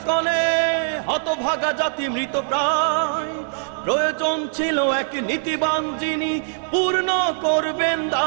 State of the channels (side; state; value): left; silent; 64 dB below the other